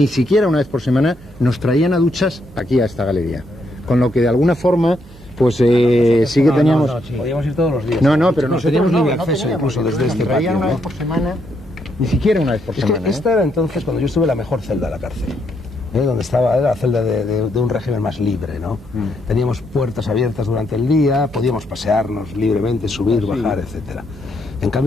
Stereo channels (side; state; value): both; normal; correlation 0.76